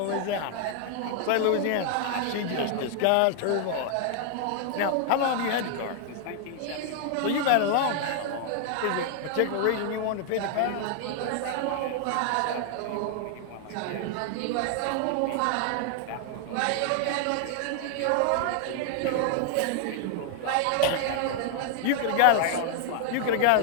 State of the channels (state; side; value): different; both; correlation 0.00